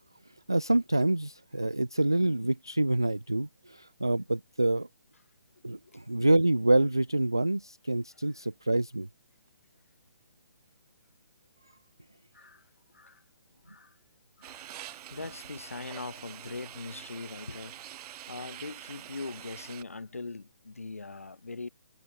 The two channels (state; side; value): inverted; both; correlation -0.97